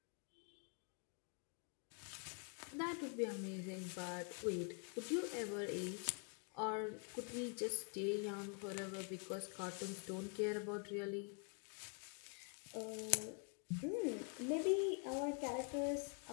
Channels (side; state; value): right; quieter; 39.6 dB